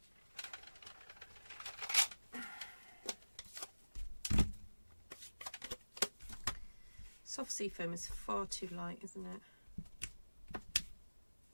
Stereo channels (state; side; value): inverted; both; correlation -1.00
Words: Soft sea foam is far too light, isn't it?